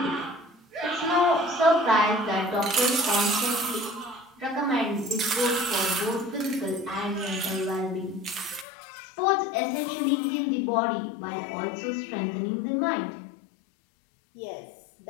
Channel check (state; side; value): drops out; right; at 8.7 s